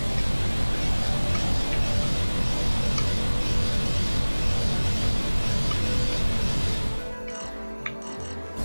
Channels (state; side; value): inverted; both; correlation -1.00